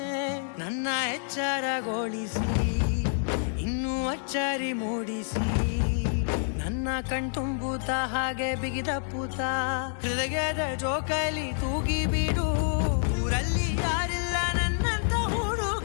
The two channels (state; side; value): silent; right; digital silence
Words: ನನ್ನ ಎಚ್ಚರಗೊಳಿಸಿ ಇನ್ನೂ ಅಚ್ಚರಿ ಮೂಡಿಸಿ, ನನ್ನ ಕಣ್ತುಂಬುತ್ತ ಹಾಗೆ ಬಿಗಿದಪ್ಪುತ್ತ ಹೃದಯದ ಜೋಕಾಲಿ ತೂಗಿ ಬಿಡು. ಊರಲ್ಲಿ ಯಾರಿಲ್ಲ ನನ್ನಂತ